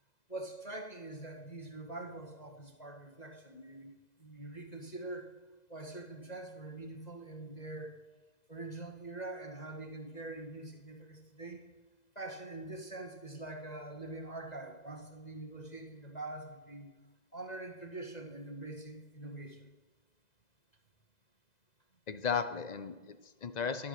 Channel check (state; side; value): late; right; 2.0 ms